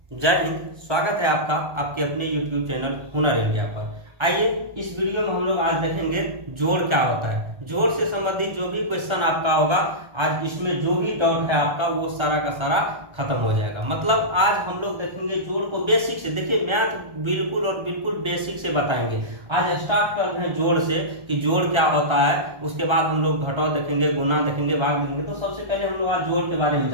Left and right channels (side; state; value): left; late; 1.3 ms